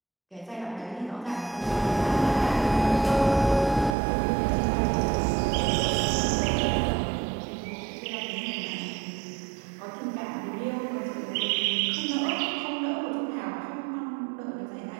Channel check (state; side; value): drops out; left; at 4.0 s